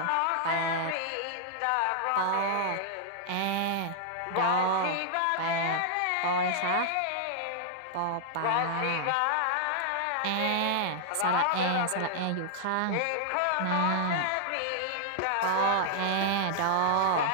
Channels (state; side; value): different; both; correlation -0.01